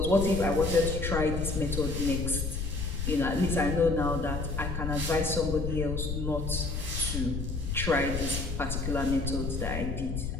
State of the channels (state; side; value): noise; left; rumble, 3 dB below the sound